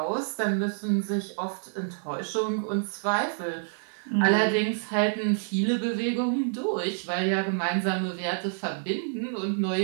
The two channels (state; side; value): silent; left; digital silence